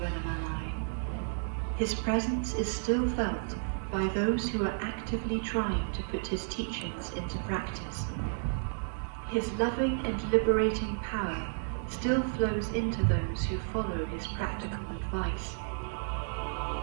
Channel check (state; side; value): silent; left; digital silence